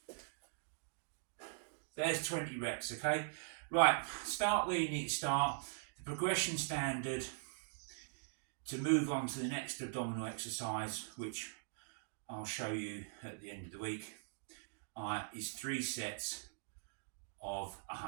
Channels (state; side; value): silent; left; digital silence